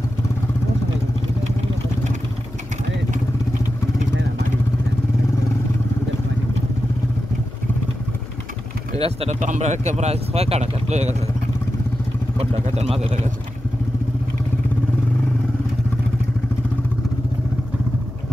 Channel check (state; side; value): noise; left; hum, 18 dB below the sound